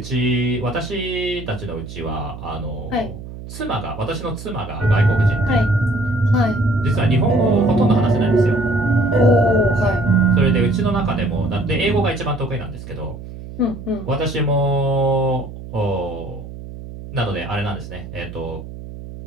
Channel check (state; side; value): noise; right; hum, 12 dB below the sound